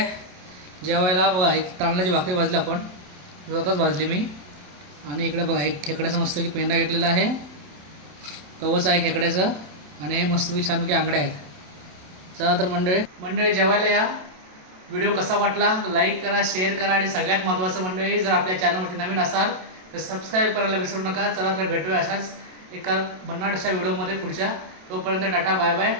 जेवायला. बघा एक तांदळाची भाकरी भाजली आपण, स्वतःच भाजली मी. आणि इकडे बघा एक खेकड्याचा मस्त की पेंडा घेतलेला आहे, कवच आहे खेकड्याचं. आणि हे मस्तपैकी छानपैकी आंगड्या आहेत. चला तर मंडळी जेवायला या. व्हिडिओ कसा वाटला लाईक करा, शेअर करा आणि सगळ्यात महत्त्वाचं मंडळी जर आपल्या चॅनलवरती नवीन असाल तर सबस्क्राईब करायला विसरू नका. चला तर भेटूया अशाच एका भन्नाट अशा व्हिडिओमध्ये पुढच्या. तोपर्यंत टाटा बाय बाय.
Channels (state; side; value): late; left; 27 ms